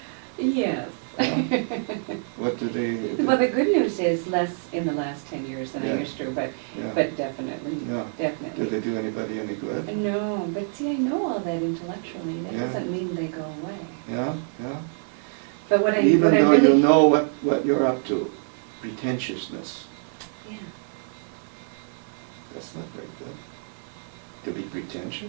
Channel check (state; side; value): silent; left; 61 dB below the other